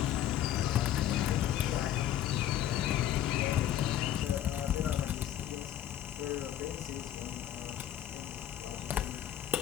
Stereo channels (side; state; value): right; quieter; 11.6 dB